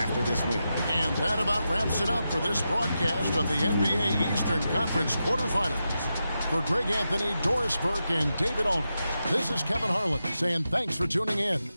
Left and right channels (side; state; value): both; inverted; correlation -0.89